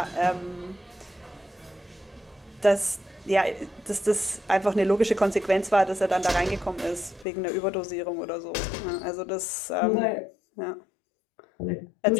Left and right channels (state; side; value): drops out; right; at 7.2 s